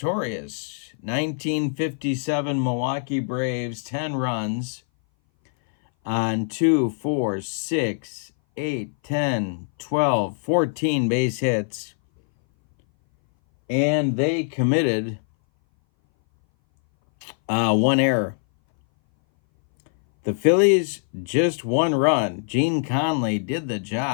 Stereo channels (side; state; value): right; silent; 60 dB below the other